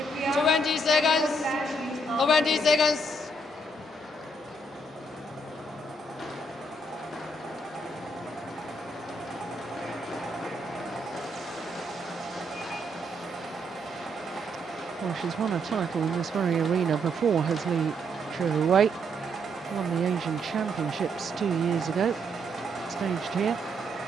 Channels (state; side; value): normal; both; correlation 0.74